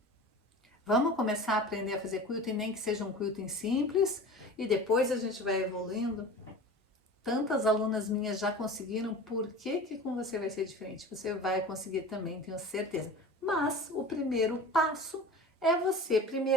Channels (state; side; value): normal; both; correlation 0.37